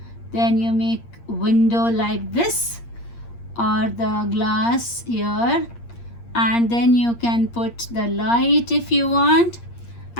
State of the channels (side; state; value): right; late; 8.6 ms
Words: Then you make window like this or the glass here, and then you can put the light if you want.